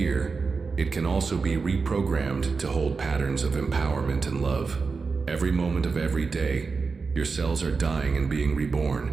it can also be reprogrammed to hold patterns of empowerment and love. Every moment of every day, your cells are dying and being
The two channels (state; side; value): quieter; left; 4.7 dB